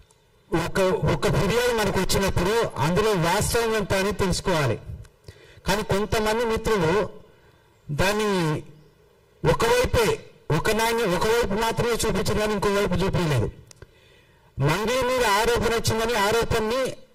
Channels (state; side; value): identical; both; correlation 1.00